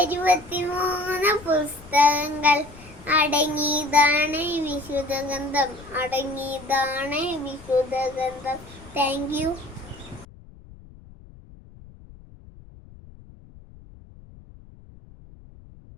പുസ്തകങ്ങൾ അടങ്ങിയതാണ് വിശുദ്ധ ഗ്രന്ഥം. Thank you.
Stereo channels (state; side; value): noise; left; rumble, 21 dB below the sound